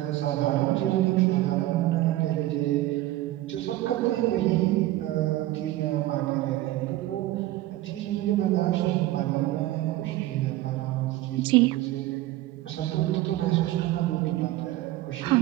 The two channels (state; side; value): quieter; left; 16.0 dB